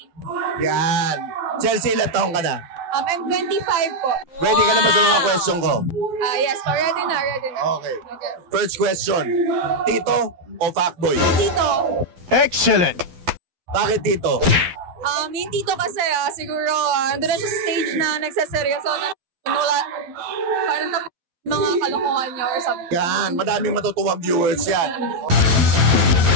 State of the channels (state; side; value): late; left; 12 ms